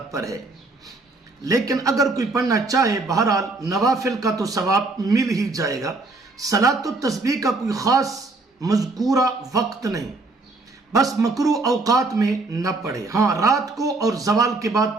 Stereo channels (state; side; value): quieter; left; 3.4 dB